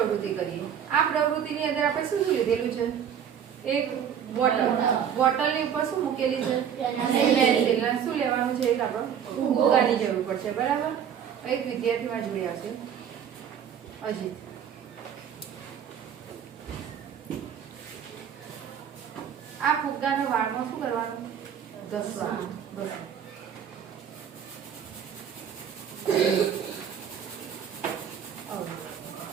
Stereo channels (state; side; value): quieter; left; 8.5 dB